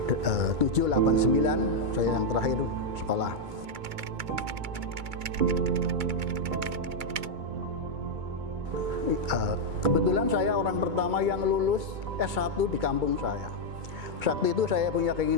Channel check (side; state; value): left; late; 2.2 ms